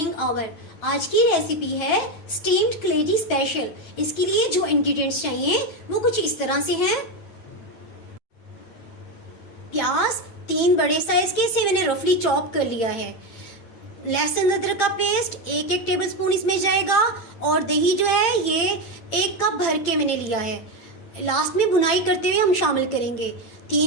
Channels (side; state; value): right; late; 8.9 ms